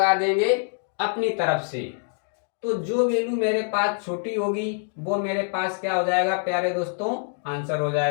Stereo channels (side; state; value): right; silent; digital silence